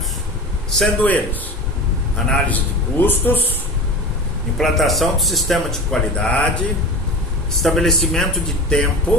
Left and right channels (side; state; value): both; normal; correlation 0.32